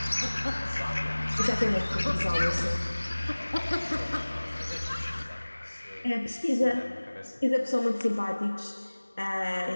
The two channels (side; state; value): both; inverted; correlation -1.00